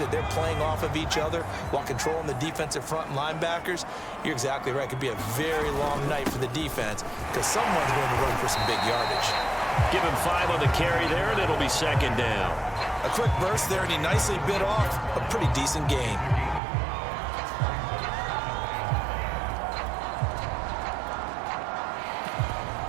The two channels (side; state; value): left; drops out; at 16.6 s